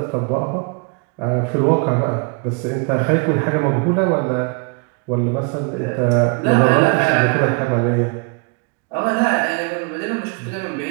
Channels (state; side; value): quieter; left; 34.9 dB